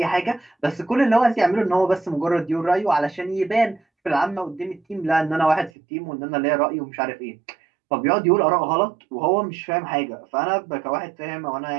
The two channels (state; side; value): drops out; left; at 5.7 s